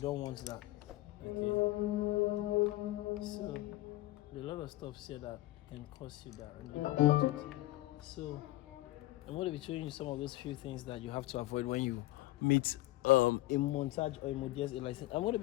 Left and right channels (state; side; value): quieter; right; 17.7 dB